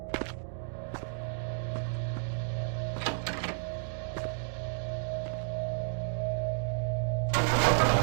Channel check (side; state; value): left; silent; digital silence